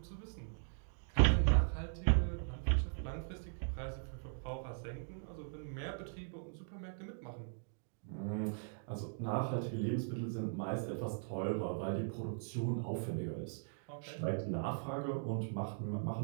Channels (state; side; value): silent; left; digital silence